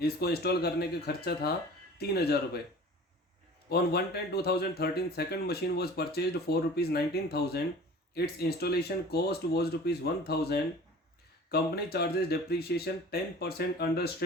इसको install करने का खर्चा था 3,000 रुपये। On 1/10/2013 second machine was purchased for ₹19,000। It's installation cost was ₹1,000। Company charges depreciation 10% under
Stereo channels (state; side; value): normal; both; correlation 0.42